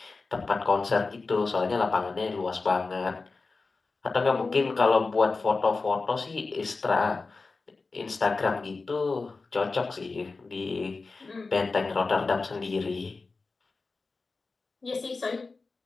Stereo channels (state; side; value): quieter; right; 3.9 dB